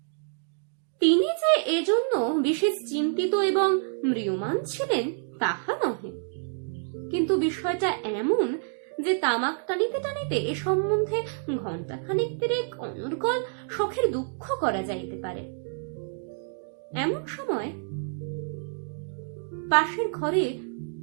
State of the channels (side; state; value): left; silent; 59 dB below the other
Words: তিনি যে এজন্য বিশেষ চিন্তিত এবং ম্রিয়মাণ ছিলেন তাহা নহে, কিন্তু বিষয়টা এমন যে তামাক টানিতে টানিতে এ সম্বন্ধে ঘণ্টাখানিক তিরেক অনর্গল শখের দুঃখ করা যাইতে পারে। এমন সময় পাশের ঘরে